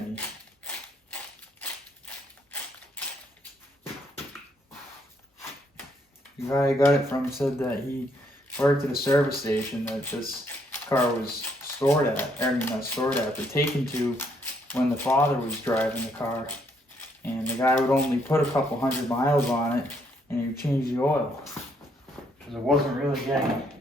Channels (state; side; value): normal; both; correlation 0.71